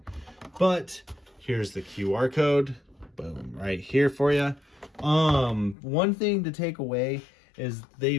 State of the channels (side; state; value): right; drops out; at 5.8 s